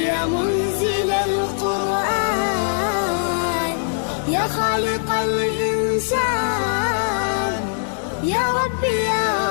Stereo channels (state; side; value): silent; right; digital silence